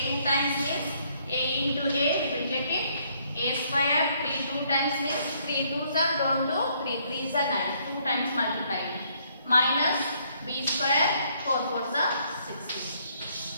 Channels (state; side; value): inverted; both; correlation -0.68